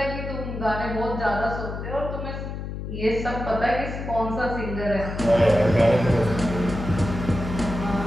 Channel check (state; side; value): noise; left; hum, 6 dB below the sound